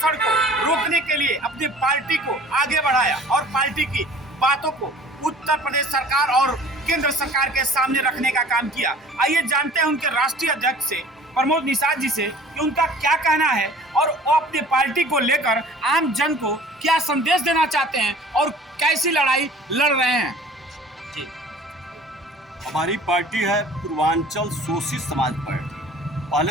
को रोकने के लिए अपनी पार्टी को आगे बढ़ाया और पार्टी की बातों को उत्तर प्रदेश सरकार और केंद्र सरकार के सामने रखने का काम किया। आइए जानते हैं उनके राष्ट्रीय अध्यक्ष से, प्रमोद निषाद जी से, कि उनका क्या कहना है और वो अपनी पार्टी को लेकर आम जन को क्या संदेश देना चाहते हैं और कैसी लड़ाई लड़ रहे हैं। जी, हमारी पार्टी है पूर्वांचल शोषित समाज पार्टी।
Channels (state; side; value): normal; both; correlation 0.47